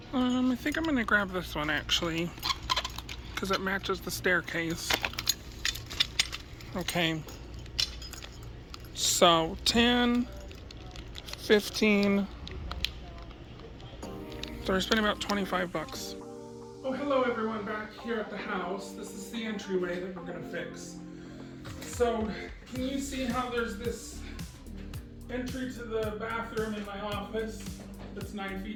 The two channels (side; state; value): both; identical; correlation 1.00